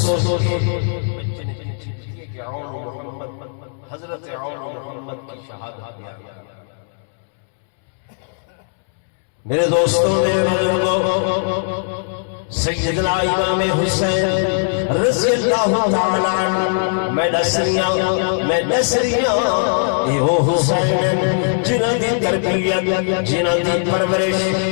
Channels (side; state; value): right; silent; 66 dB below the other